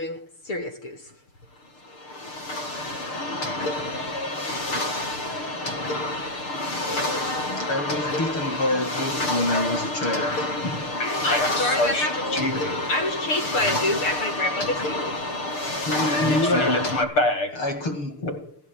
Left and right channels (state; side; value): late; right; 6.7 ms